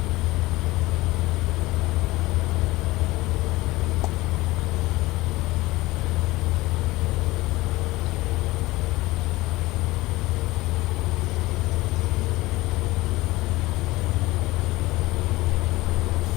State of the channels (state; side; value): quieter; right; 19.6 dB